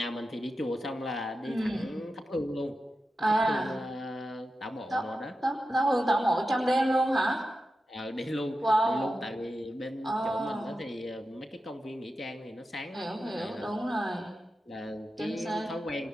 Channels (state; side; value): normal; both; correlation 0.91